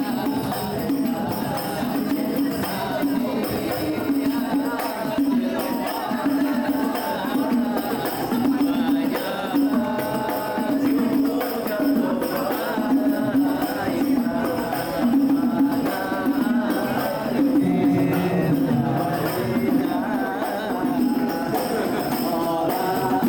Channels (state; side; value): identical; both; correlation 1.00